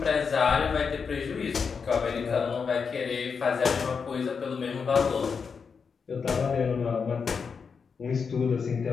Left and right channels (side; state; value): right; quieter; 5.7 dB